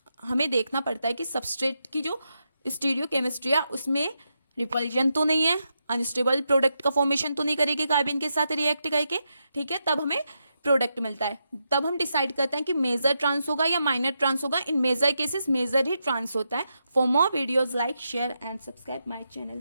हमें देखना पड़ता है कि सबस्ट्रेट की जो स्टीरियो केमिस्ट्री है उसमें रिपल्जन तो नहीं है, अनस्टेबल प्रोडक्ट का फॉर्मेशन तो नहीं करेगी कार्बिन के साथ रिएक्ट करके, ठीक है, तब हमें प्रोडक्ट मिलता है। तब हम डिसाइड करते हैं कि मेजर ट्रांस होगा या माइनर ट्रांस होगा। इन मेजर केसेस मेजर ही ट्रांस होता है। For more videos like share and subscribe my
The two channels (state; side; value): inverted; both; correlation -0.85